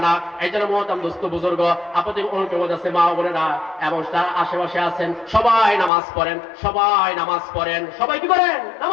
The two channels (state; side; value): drops out; right; at 5.9 s